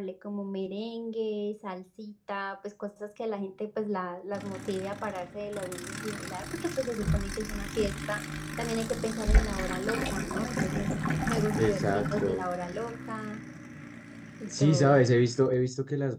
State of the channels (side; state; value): both; identical; correlation 1.00